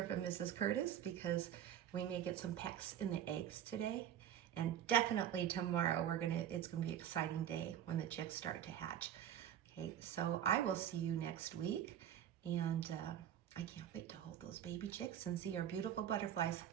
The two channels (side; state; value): left; quieter; 10.3 dB